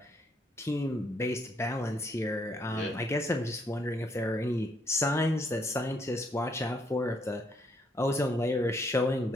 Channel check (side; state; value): both; normal; correlation 0.71